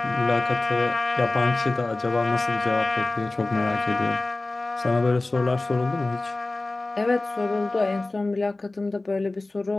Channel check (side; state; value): right; quieter; 3.0 dB